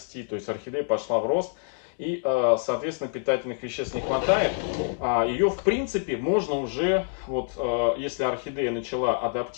то есть орхидея пошла в рост. И, соответственно, питательных веществ не хватает. Ее, в принципе, можно уже, вот, если орхидея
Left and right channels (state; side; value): silent; right; digital silence